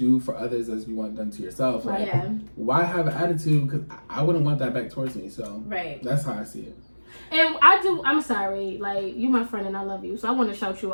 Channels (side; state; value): both; inverted; correlation -1.00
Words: for others as you want done to yourself. Like, why have an attitude? Because I wouldn't want that back towards me. So that's how I see it. And I'm sorry, like, you my friend and I love you, so I want to shout you